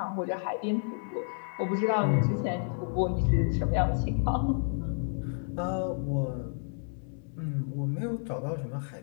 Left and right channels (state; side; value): silent; right; digital silence